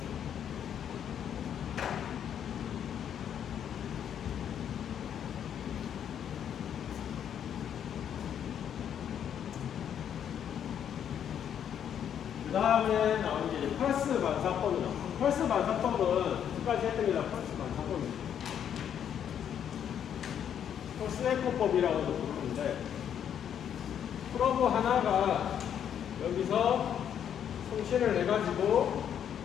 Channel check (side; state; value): right; quieter; 9.0 dB